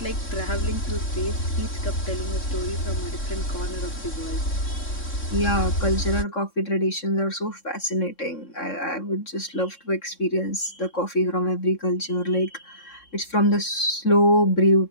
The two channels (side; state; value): right; late; 3.6 ms